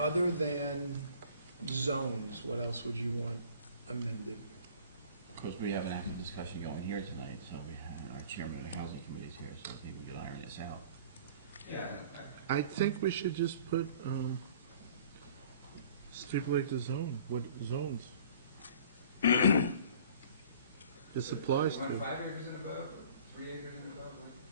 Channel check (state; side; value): inverted; both; correlation -0.49